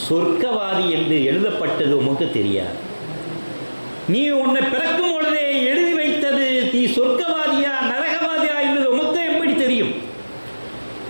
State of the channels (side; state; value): both; inverted; correlation -1.00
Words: சொர்க்கவாதி என்று எழுதப்பட்டது உமக்கு தெரியாது. நீ உன்னை பிறக்கும் பொழுதே எழுதி வைத்தது நீ சொர்க்கவாதியா நரகவாதியா என்பது உமக்கு எப்படி தெரியும்?